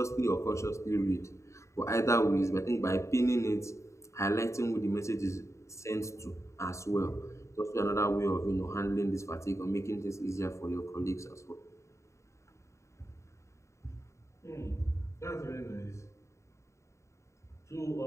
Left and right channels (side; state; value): right; late; 0.14 ms